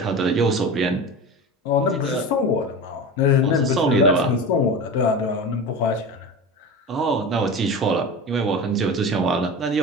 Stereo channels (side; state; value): both; normal; correlation 0.30